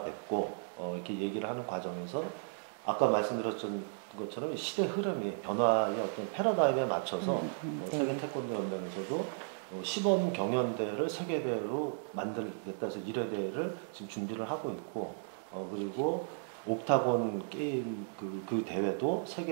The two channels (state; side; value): silent; left; digital silence